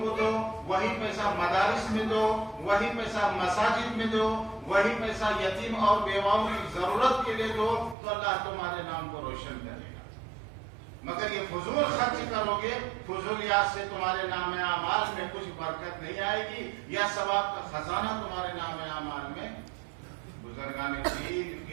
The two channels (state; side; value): drops out; left; at 8.0 s